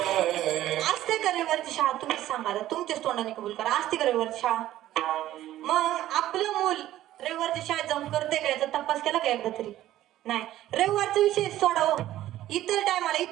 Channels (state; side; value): quieter; left; 13.8 dB